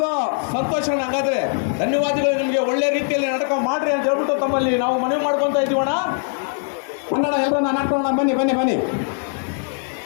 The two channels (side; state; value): right; silent; 59 dB below the other